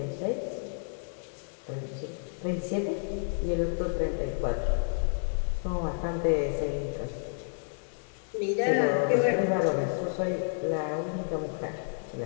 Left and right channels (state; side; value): silent; right; 58 dB below the other